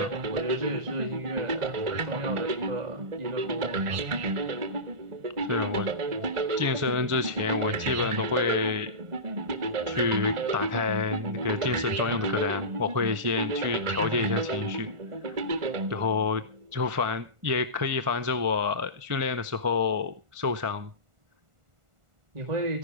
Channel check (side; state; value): left; late; 1.4 ms